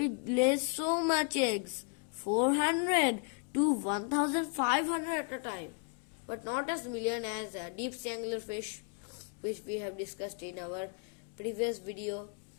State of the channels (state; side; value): quieter; right; 36.8 dB